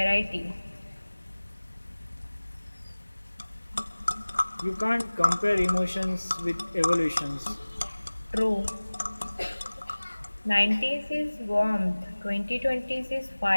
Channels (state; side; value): inverted; both; correlation -1.00